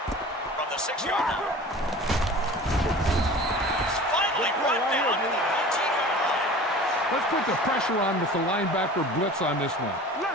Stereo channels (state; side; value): normal; both; correlation 0.40